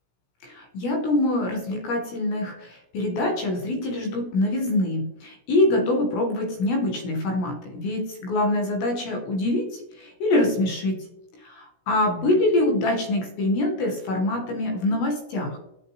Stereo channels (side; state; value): right; late; 16 ms